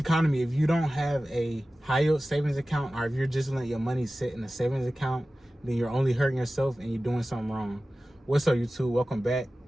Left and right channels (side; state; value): both; normal; correlation 0.96